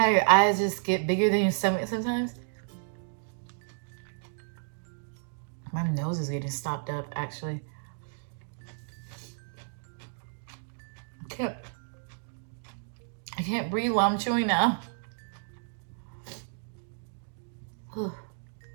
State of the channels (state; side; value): silent; left; digital silence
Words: your eyes just get bigger than your stomach sometimes? My nose is getting stopped up actually. I can't breathe while I'm chewing now.